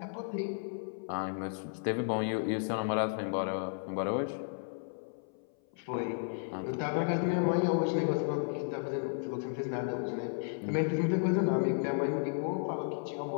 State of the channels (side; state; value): right; silent; 55 dB below the other